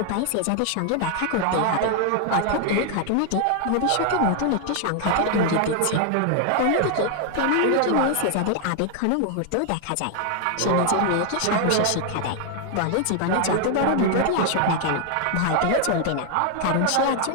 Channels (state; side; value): different; both; correlation 0.00